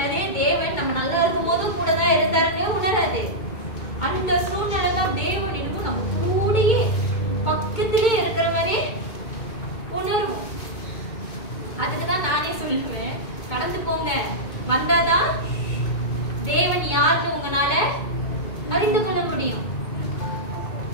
தேவன் நம்ம நல்லா இருக்கும் போது கூட தான் இருந்தாருன்னு உணராது. அந்த சூழ்நிலை தான் தேவன் என்னமோ நம்ம கூடயே பக்கத்திலே இருக்கிற மாதிரி உணர்வோம். அதுக்குதான் நானே சொல்லுவேன், கடந்து போங்க, வந்தாதான் தேவன் யாருன்னு உங்களால அறிந்து கொள்ள முடியும்.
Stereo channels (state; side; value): late; right; 2.2 ms